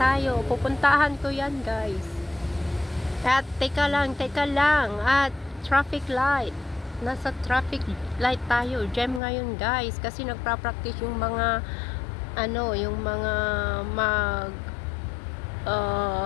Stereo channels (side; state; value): right; drops out; at 9.2 s